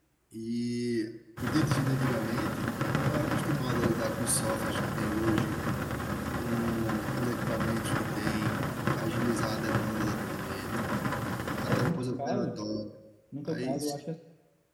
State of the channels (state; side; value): identical; both; correlation 1.00